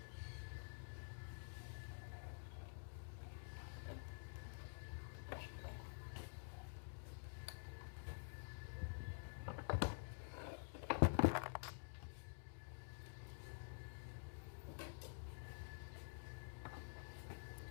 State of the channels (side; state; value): right; silent; digital silence